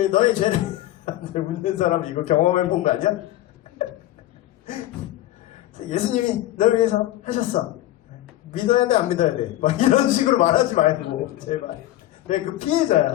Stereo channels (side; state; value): right; quieter; 14.7 dB